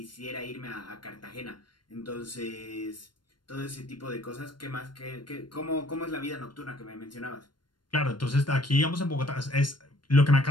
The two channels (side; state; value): right; late; 0.72 ms